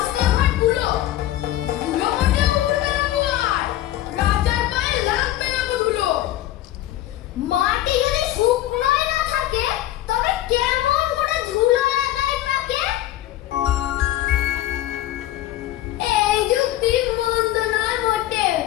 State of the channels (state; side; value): quieter; right; 14.1 dB